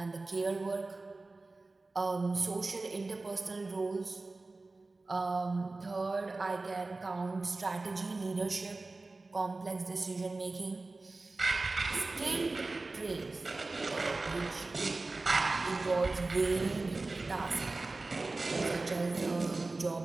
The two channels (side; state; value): left; quieter; 3.4 dB